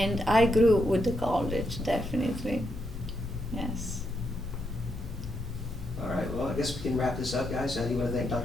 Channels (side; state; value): both; normal; correlation 0.80